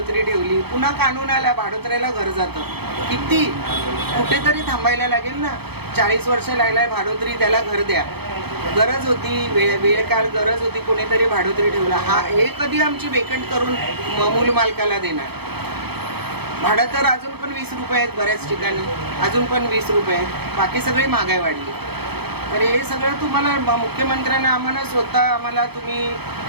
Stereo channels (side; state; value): left; late; 0.97 ms